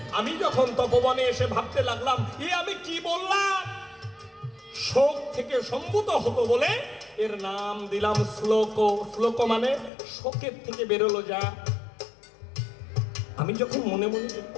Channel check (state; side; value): drops out; right; at 9.9 s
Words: আমি যখন তপবনে এসে ভাবতে লাগলাম, আমি কি বললাম? শোক থেকে সম্ভূত হতো বলে এর নাম দিলাম শ্লোক। শ্লোক মানে শোকের থেকে বেরোলো যা। আমি যখন মনে মনে